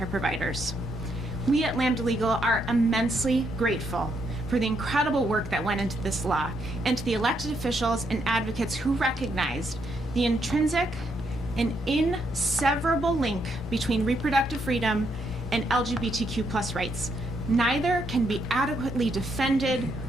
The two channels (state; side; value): normal; both; correlation 0.76